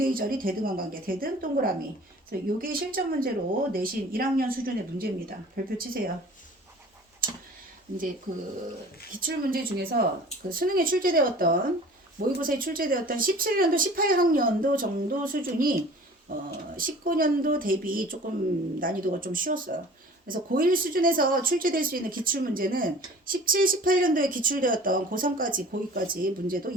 절이 대등한 관계. 대등 동그라미. 그래서 요게 실전 문제로 내신 1학년 수준의 문제입니다. 별표 치세요. 이제 그 기출 문제 중에서 그 수능에 출제되었던 모의고사에 출제되었던 17년도 18학년도 정도 수준이 19년도 대비 조금 난이도가 좀 쉬웠어요. 그래서 고1 수준에서 출제될 수 있는 기출 문제는 17, 18년도에 기출되었던 고3까지 고2까지 문제도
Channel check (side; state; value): both; normal; correlation 0.45